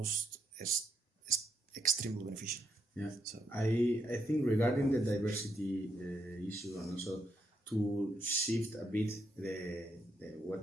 extremely beneficial. Yeah, So I think regarding the diversity issue, and also to shift a bit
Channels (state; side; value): normal; both; correlation 0.78